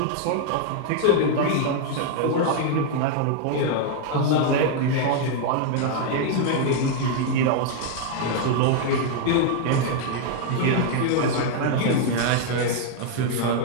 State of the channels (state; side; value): different; both; correlation 0.00